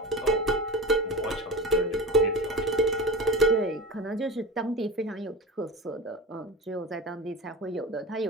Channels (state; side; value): normal; both; correlation 0.30